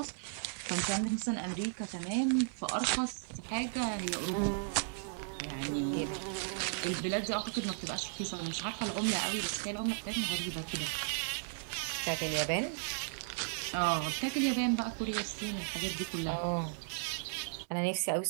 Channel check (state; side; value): silent; left; 54 dB below the other